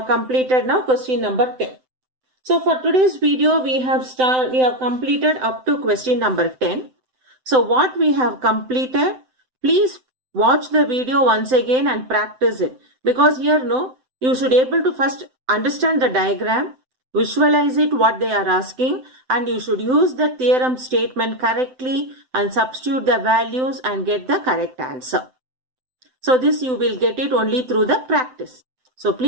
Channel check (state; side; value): late; left; 7.8 ms